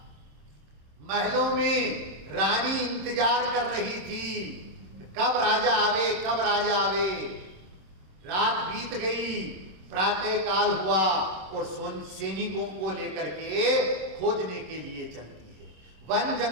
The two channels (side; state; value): left; late; 26 ms